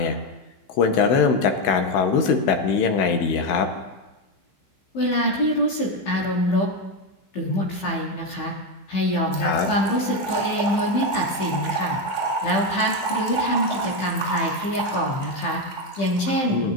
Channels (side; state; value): right; late; 15 ms